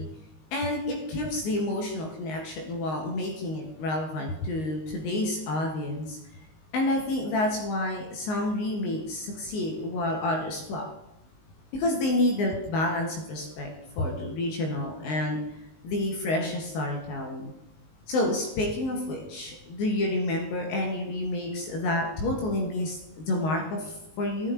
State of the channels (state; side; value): late; right; 19 ms